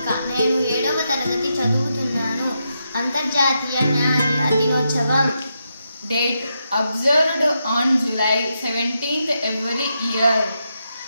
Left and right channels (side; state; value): both; inverted; correlation -0.84